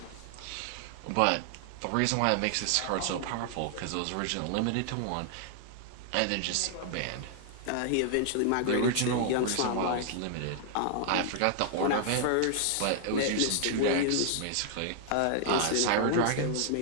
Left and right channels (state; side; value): different; both; correlation 0.00